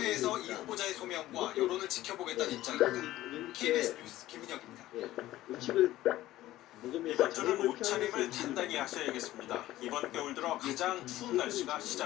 이 후보자의 소명과 여론을 지켜보겠다는 입장입니다. KBS 뉴스 김민혁입니다. 이번 주는 옷차림을 단단히 하셔야겠습니다. 이번 겨울 들어 가장 추운 날씨가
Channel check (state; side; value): quieter; right; 15.4 dB